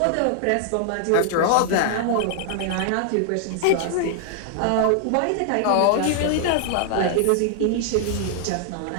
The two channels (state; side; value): different; both; correlation 0.00